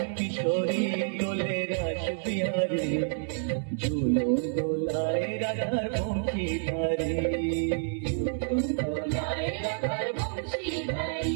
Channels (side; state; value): left; silent; digital silence